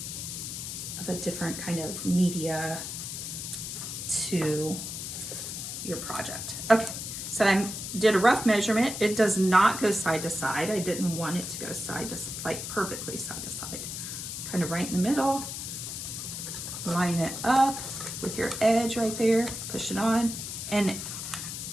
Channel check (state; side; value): noise; left; hiss, 6 dB below the sound